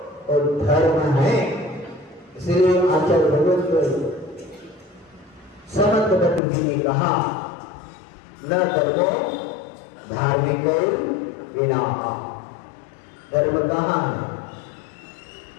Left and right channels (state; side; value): drops out; right; at 6.4 s